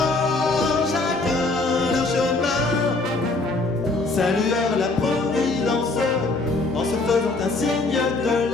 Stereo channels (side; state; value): right; quieter; 3.3 dB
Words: chacun leur chemin, saluèrent la Providence en se faisant un signe de